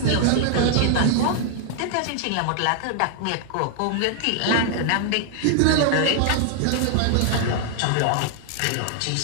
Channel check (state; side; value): different; both; correlation -0.01